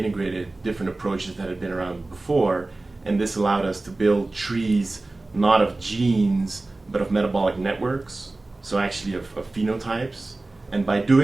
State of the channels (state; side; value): quieter; left; 3.1 dB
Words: different approaches that had been around before, and this allowed us to build trees not of genes but of metabolic networks, so actually of phenotypes. And by